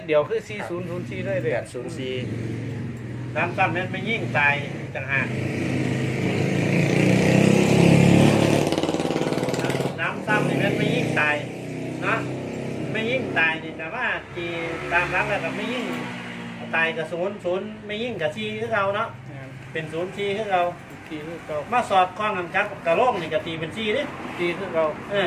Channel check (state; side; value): identical; both; correlation 1.00